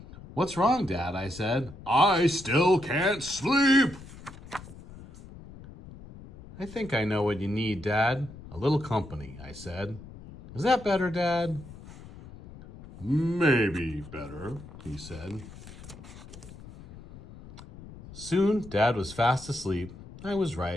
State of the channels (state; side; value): noise; left; rumble, 17 dB below the sound